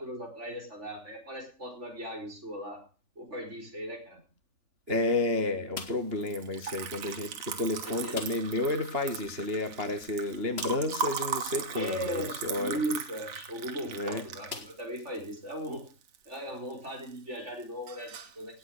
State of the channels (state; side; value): late; left; 3.4 ms